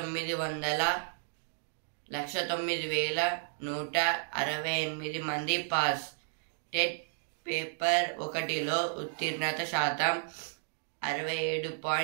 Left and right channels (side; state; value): left; silent; digital silence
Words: మంది పాస్. టెట్ పేపర్ 1లో ఉత్తీర్ణత శాతం